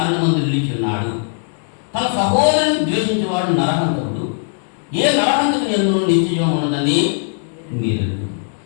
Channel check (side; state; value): right; silent; digital silence